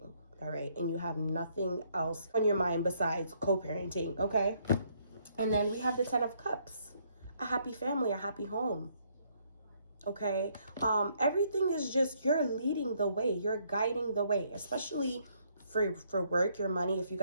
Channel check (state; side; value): inverted; both; correlation -0.69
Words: all right? And you have nothing else on your mind besides co-parenting, okay? And then we have the 10 of Cups. A happy family, a happy home, okay? Everything is just, you're leading the way. You're guiding the way, especially for work, your money, if you